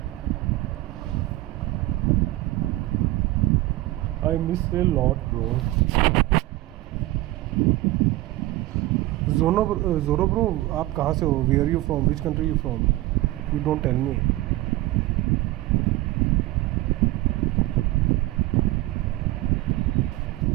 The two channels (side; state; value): left; quieter; 17.8 dB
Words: I miss a lot, bro. Zoro bro, आप कहाँ से हो? Where are you from? Which country are you from? You don't tell me.